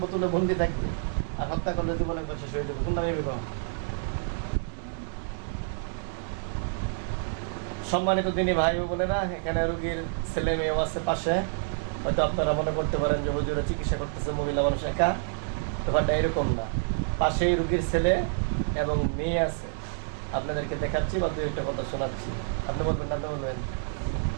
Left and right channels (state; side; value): silent; left; digital silence